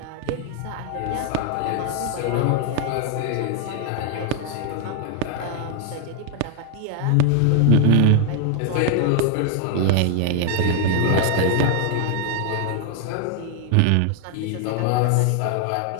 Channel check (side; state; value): both; different; correlation 0.00